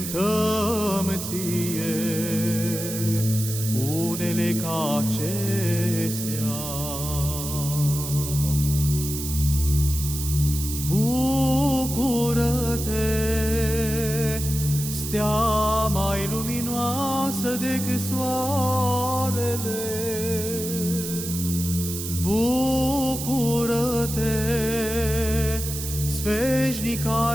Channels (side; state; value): right; noise; hiss, 6 dB below the sound